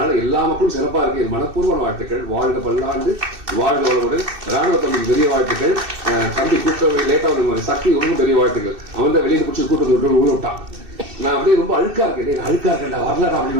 எல்லா மக்களும் சிறப்பா இருக்கு. மனப்பூர்வமான வாழ்த்துக்கள். வாழ்க பல்லாண்டு, வாழ்க வளமுடன். ராணுவ தம்பிக்கு பெரிய வாழ்த்துக்கள். தம்பி கூட்ட லேட்டா சக்தி ரொம்ப பெரிய வாழ்த்துக்கள். அவன் தான் வெளியே பிடிச்சி கூட்டத்தை விட்டான். நான் அப்படியே ரொம்ப அழுக்கா இருக்கேன்டா வரலடா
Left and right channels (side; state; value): left; late; 2.6 ms